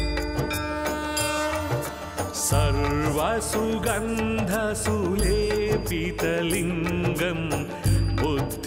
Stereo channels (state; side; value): identical; both; correlation 1.00